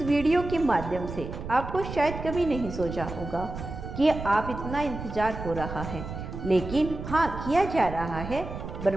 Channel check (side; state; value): right; noise; rumble, 8 dB below the sound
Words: वीडियो के माध्यम से आपको शायद कभी नहीं सोचा होगा कि आप इतना इंतजार हो रहा है, लेकिन हाँ, किया जा रहा है।